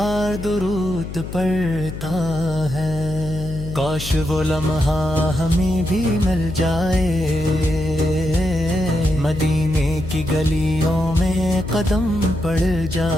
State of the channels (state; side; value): noise; left; hum, 9 dB below the sound